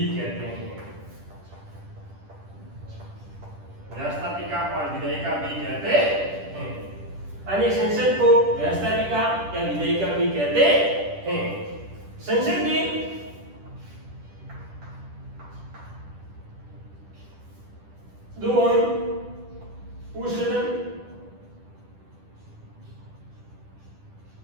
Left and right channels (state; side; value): late; left; 10 ms